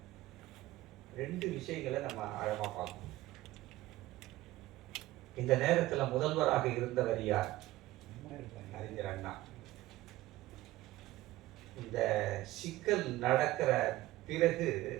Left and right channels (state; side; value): quieter; left; 16.7 dB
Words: 2 விஷயங்களை நம்ம ஆழமா பார்க்கணும். இந்த நேரத்தில் முதல்வராக இருந்தவர் யார்? அறிஞர் அண்ணா. இந்த சிக்கல் நடக்கிற பிறகு